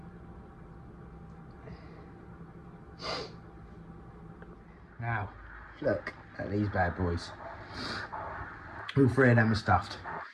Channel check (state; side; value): identical; both; correlation 1.00